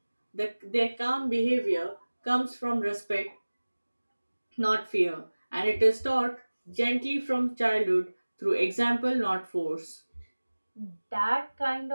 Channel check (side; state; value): both; inverted; correlation -1.00